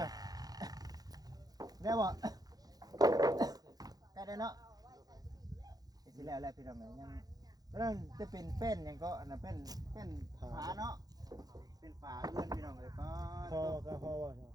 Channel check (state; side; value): late; left; 0.19 ms